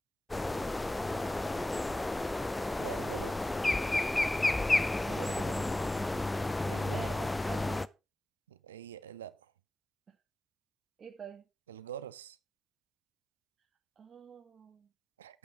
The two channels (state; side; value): normal; both; correlation 0.95